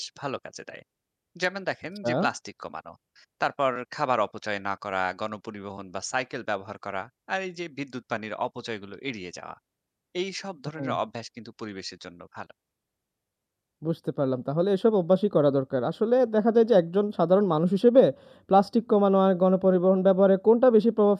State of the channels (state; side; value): identical; both; correlation 1.00